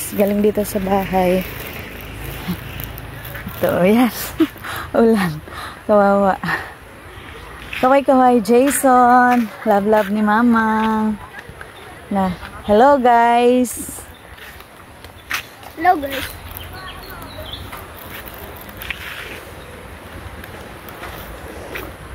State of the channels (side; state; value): both; identical; correlation 1.00